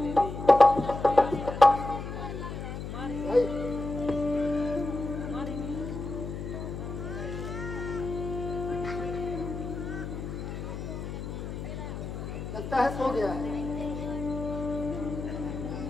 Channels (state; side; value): noise; left; hum, 7 dB below the sound